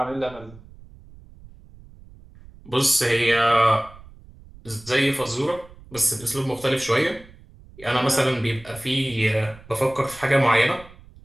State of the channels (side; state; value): right; noise; rumble, 21 dB below the sound